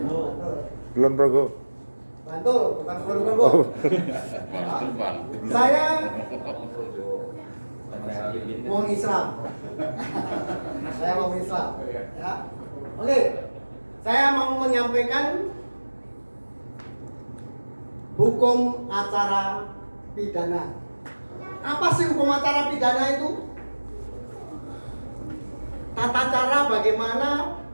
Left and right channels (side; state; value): both; inverted; correlation -1.00